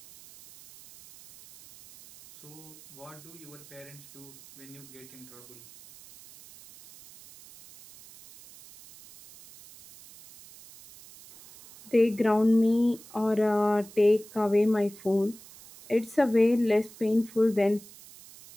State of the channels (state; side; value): noise; right; hiss, 20 dB below the sound